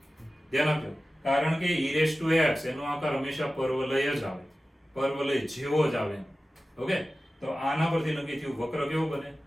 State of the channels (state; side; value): normal; both; correlation 0.95